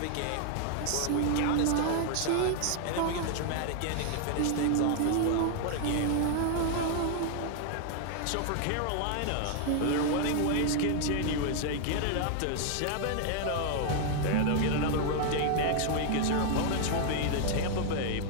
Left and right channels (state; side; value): different; both; correlation 0.00